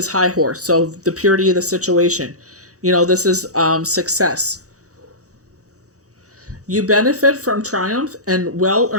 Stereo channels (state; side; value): late; left; 0.66 ms